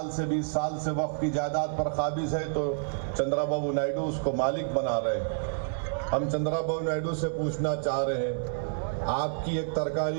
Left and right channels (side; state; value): left; silent; 57 dB below the other